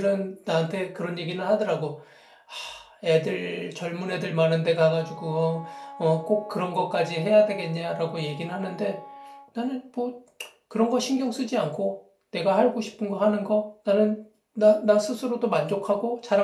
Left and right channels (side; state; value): both; identical; correlation 1.00